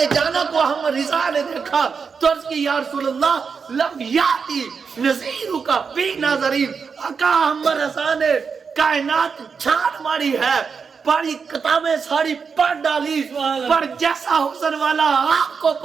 جانا کو ہم رضا نے دیکھا تو عرض کی یا رسول اللہ لم یاتی نظیرو کا فی نظرین، آقا ہم رضا نے کائنات چھان ماری ہے، پاری کتابیں ساری پڑھ ڈالی، پر جیسا حسن والا آپ کو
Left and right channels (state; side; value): quieter; left; 5.7 dB